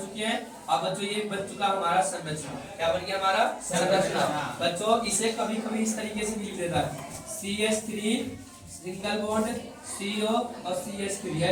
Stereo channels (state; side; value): identical; both; correlation 1.00